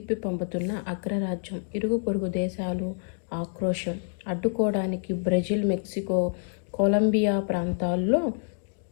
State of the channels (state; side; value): silent; right; digital silence